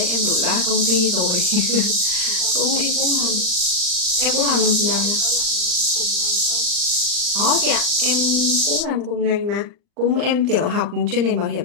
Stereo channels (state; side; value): late; left; 39 ms